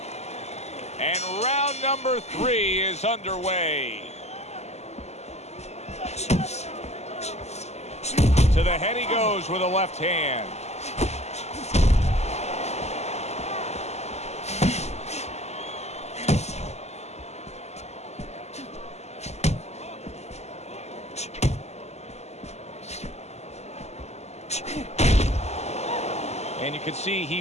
And round number 3 is underway. To the head he goes with a left hand. And you can see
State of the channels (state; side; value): late; right; 0.32 ms